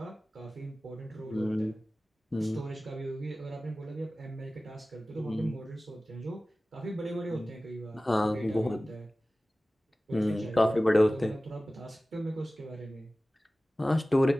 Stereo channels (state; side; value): normal; both; correlation 0.97